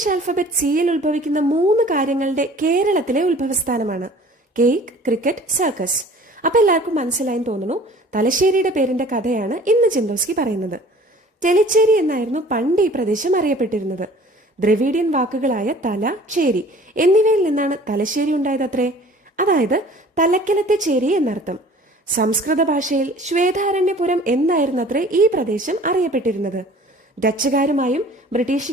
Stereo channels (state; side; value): normal; both; correlation 0.48